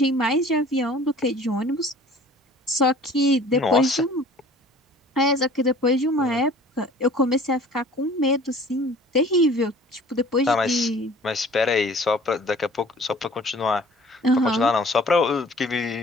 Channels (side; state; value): both; normal; correlation 0.49